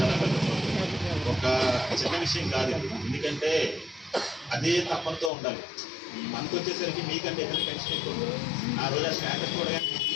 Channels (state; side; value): drops out; right; at 5.3 s